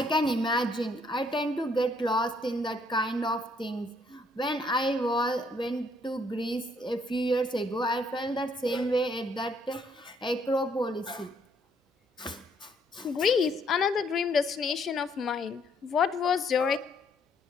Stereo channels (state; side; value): normal; both; correlation 0.68